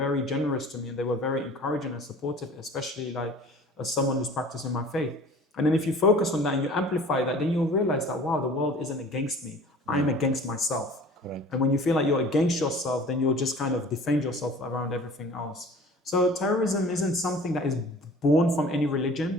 generous to me, and they were very encouraging and supportive, especially like as someone who's practicing my faith. And then if you focus on that and you amplify that, then you'll realize that, wow, the world isn't against me. I'm against myself. Correct. And when you feel like you're against yourself, then you'll just kind of defend yourself around everything else. So terrorism isn't something that is born from any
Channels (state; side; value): normal; both; correlation 0.46